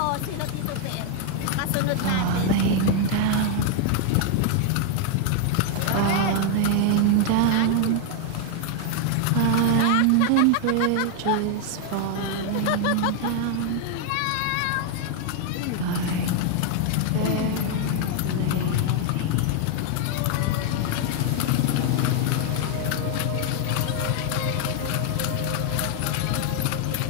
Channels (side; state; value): both; different; correlation 0.00